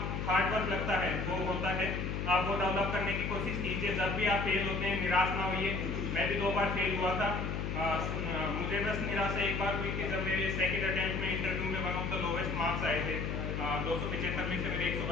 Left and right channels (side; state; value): left; noise; hum, 2 dB below the sound